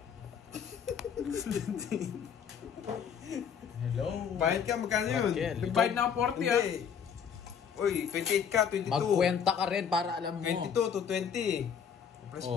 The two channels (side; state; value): right; quieter; 7.4 dB